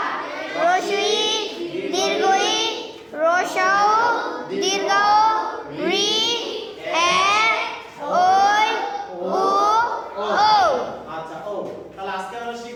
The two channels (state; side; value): identical; both; correlation 1.00